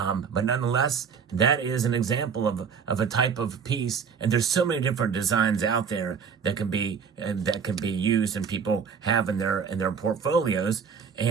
nonetheless, that is an example of a type of piece, and there's so many different designs out there that can be used and people have in their portfolios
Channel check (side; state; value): left; quieter; 6.5 dB